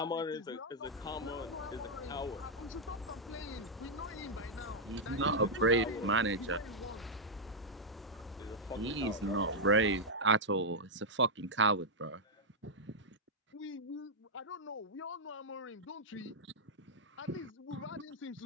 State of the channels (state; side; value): normal; both; correlation -0.05